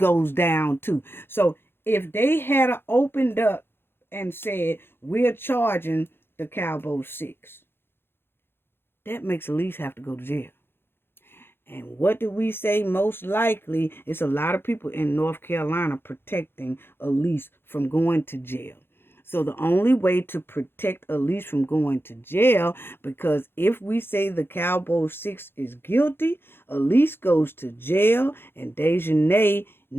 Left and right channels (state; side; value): late; right; 0.11 ms